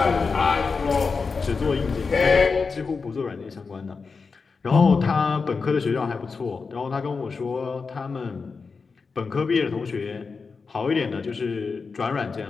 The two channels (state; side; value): quieter; right; 4.8 dB